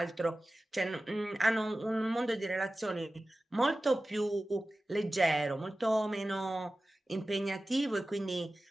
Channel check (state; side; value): normal; both; correlation 0.96